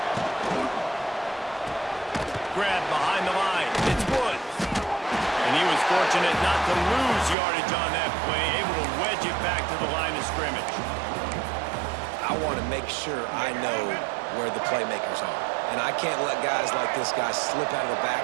Grabbed behind the line. It's Woods. And he was fortunate not to lose yardage on that play, able to wedge it back to the line of scrimmage. I want to make sure I know where the playmakers are. And I can't let guys like this guy slip out of the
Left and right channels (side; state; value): left; drops out; at 7.4 s